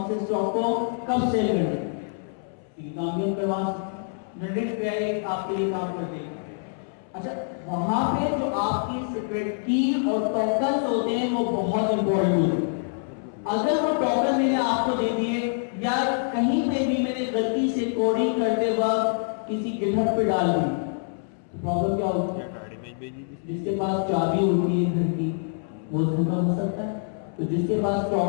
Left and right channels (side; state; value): right; silent; 61 dB below the other